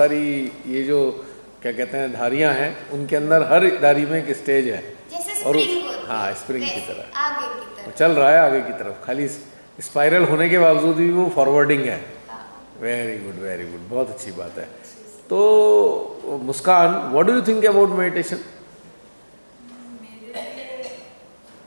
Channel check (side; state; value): both; inverted; correlation -1.00